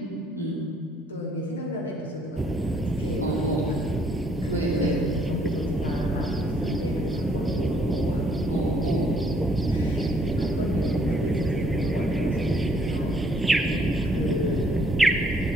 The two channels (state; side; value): normal; both; correlation 0.66